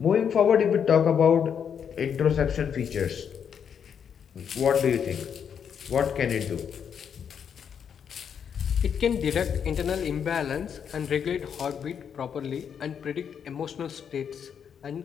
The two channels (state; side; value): quieter; right; 7.7 dB